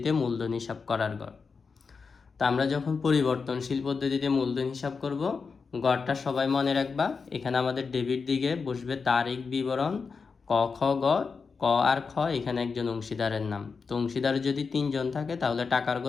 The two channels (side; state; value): right; quieter; 5.1 dB